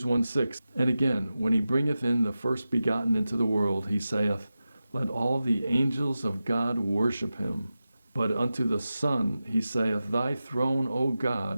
1:6, "And again, when he bringeth in the first begotten into the world, he saith, Let all the angels of God worship him. But unto the Son he saith, Thy throne, O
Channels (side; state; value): both; inverted; correlation -0.93